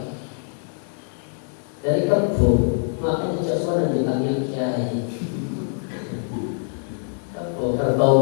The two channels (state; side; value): silent; right; 63 dB below the other